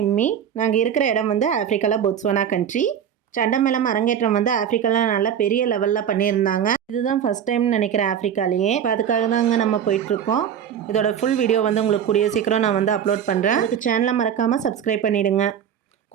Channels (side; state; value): left; quieter; 8.8 dB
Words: நாங்கள் இருக்கிற இடம் வந்து ஆஃப்ரிக்காவில் போட்ஸ்வானா கண்ட்ரி. சண்டமேளம் அரங்கேற்றம் வந்து ஆஃப்ரிக்காவில் நல்லா பெரிய லெவலில் பண்ணியிருந்தாங்க. இதுதான் ஃபஸ்ட் டைம்னு நினைக்கிறேன் ஆஃப்ரிக்காலேயே. இப்போ அதுக்காக தாங்க நம்ம போயிட்டுருக்கோம். இதோட ஃபுல் வீடியோ வந்து உங்களுக்கு கூடிய சீக்கிரம் நான் வந்து அப்லோட் பண்ணுறேன். அதுக்கு சேனலை மறக்காமல் சப்ஸ்கிரைப் பண்ணிவிடுங்க.